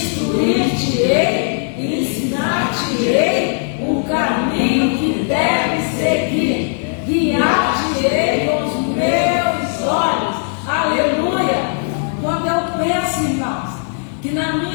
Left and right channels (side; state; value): right; silent; 59 dB below the other